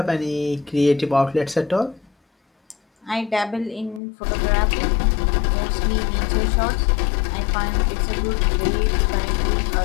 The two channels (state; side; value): drops out; right; at 4.0 s